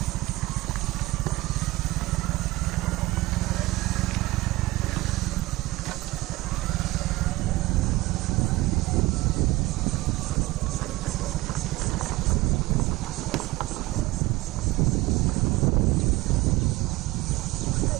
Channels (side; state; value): left; quieter; 19.6 dB